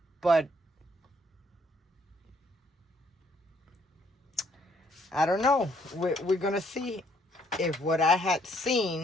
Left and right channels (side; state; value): both; normal; correlation 0.68